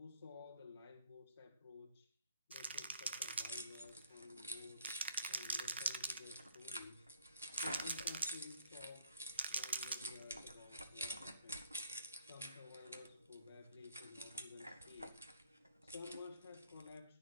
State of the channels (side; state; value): both; inverted; correlation -0.63